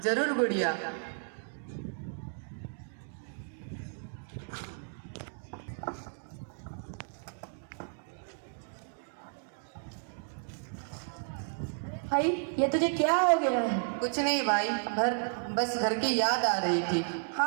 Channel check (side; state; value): left; silent; 56 dB below the other